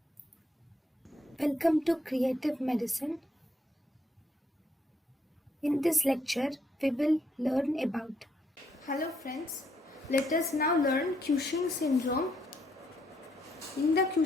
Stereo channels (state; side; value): normal; both; correlation 0.73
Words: welcome to Creative Medicine. In this lecture, we will learn about. Hello friends, let us now learn Cushing syndrome. In the